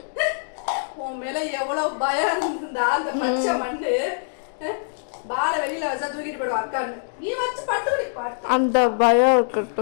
உன் மேல எவ்வளவு பயம் இருந்தா அந்த பச்சை மண்ணு பால வெளியில வச்சா தூக்கிட்டு போயிடுவா அக்கான்னு. நீ வச்சு படுத்து அந்த பயம்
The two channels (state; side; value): silent; right; digital silence